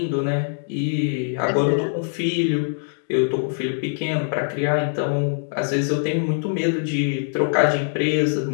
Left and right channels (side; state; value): right; silent; digital silence